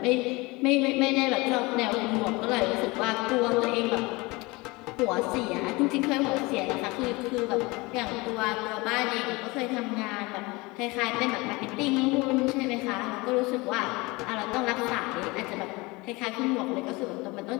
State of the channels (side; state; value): right; quieter; 24.0 dB